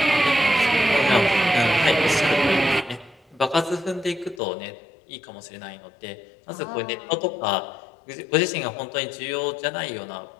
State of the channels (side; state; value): right; drops out; at 4.4 s